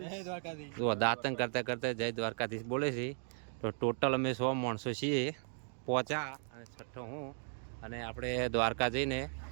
જય દ્વારકાધીશ। જો દાંતણ કરતા કરતા જય દ્વારકાધીશ બોલે છે। તો ટોટલ અમે 100 માણસો છીએ પહોંચ્યા, અને છઠ્ઠો હું। અને આપણે દ્વારકા જઈને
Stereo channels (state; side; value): silent; left; digital silence